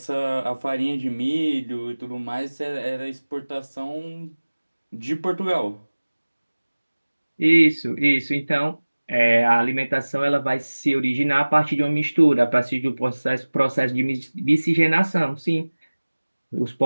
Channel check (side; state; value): both; inverted; correlation -1.00